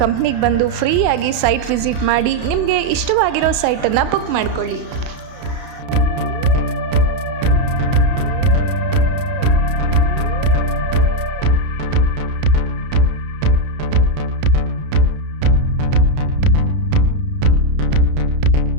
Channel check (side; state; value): left; late; 31 ms